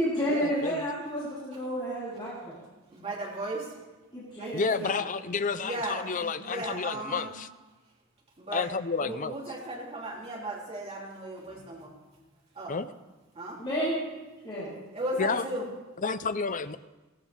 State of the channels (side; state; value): both; normal; correlation 0.13